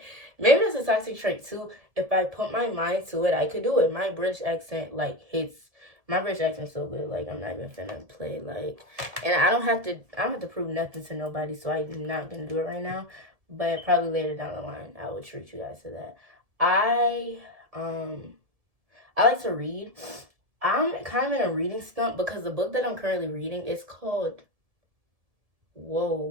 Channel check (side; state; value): left; late; 1.7 ms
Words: maybe that's a toxic trait too. If I put my mind to it, I could do it. My British accent like hits. My British accent's so good. Like, I'm not even finna play. Like, and I don't have to prove nothing to nobody. So I'm not gonna do it right now. But probably later down the line, I will treat you guys to that. I I like to read. I'm kind of in a reading slump because the book that I'm currently reading is called.